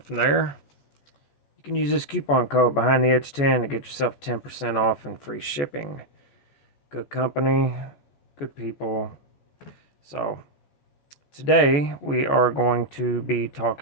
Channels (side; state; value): right; late; 14 ms